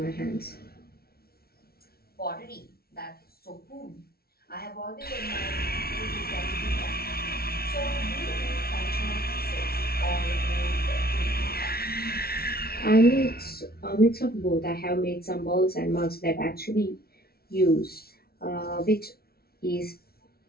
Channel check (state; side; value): late; right; 0.44 ms